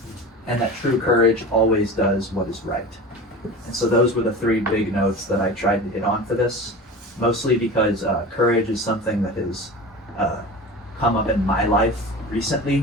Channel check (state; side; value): normal; both; correlation 0.32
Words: and that true courage always does what is right. And so those were the three big notes that I tried to hit on for this, mostly because courage is something that has come up in my life